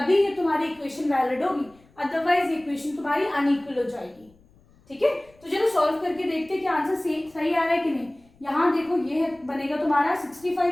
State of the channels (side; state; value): left; noise; rumble, 30 dB below the sound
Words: ये तुम्हारी इक्वेशन वैलिड होगी, अदरवाइज इक्वेशन तुम्हारी अनइक्वल हो जाएगी। ठीक है, तो चलो सॉल्व करके देखते हैं कि आंसर सही आ रहा है कि नहीं। यहाँ देखो ये बनेगा तुम्हारा